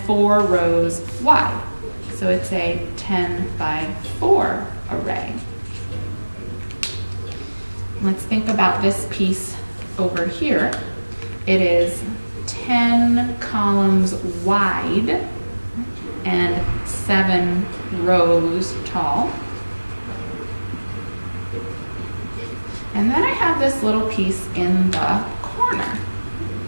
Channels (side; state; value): both; inverted; correlation -1.00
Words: 4 rows wide. So it's a 10 by 4 array. Let's think about this piece over here. It is 10 columns wide and 7 rows tall. And then I have this little piece in the corner.